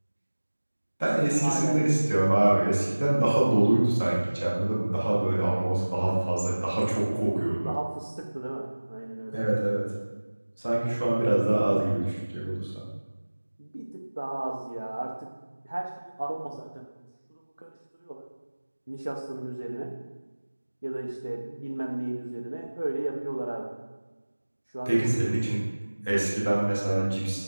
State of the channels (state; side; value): inverted; both; correlation -1.00